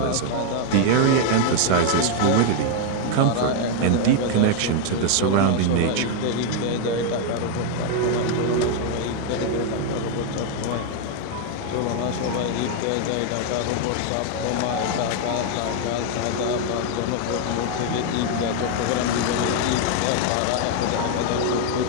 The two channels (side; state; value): both; different; correlation 0.00